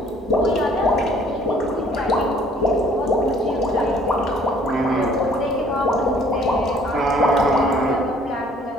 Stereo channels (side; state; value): both; normal; correlation 0.58